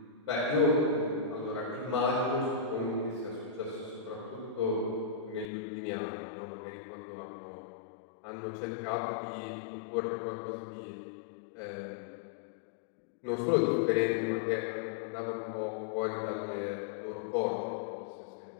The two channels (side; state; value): right; drops out; at 5.5 s